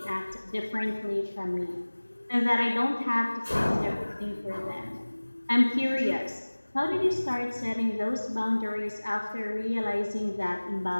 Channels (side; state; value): both; inverted; correlation -1.00